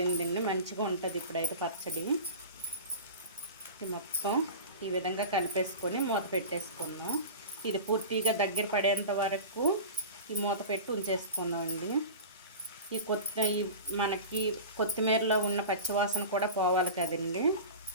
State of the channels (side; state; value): both; inverted; correlation -0.32